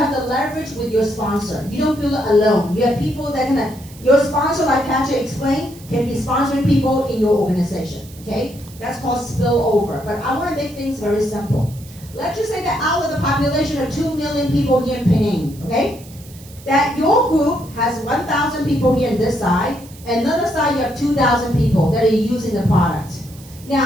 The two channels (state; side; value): noise; right; hiss, 21 dB below the sound